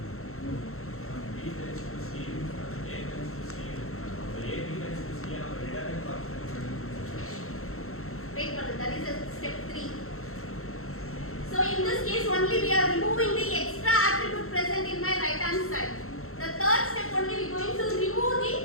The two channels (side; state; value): right; late; 0.63 ms